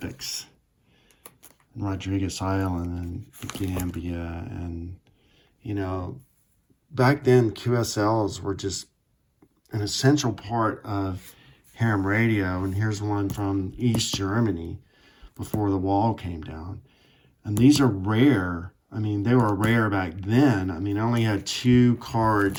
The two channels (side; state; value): both; identical; correlation 1.00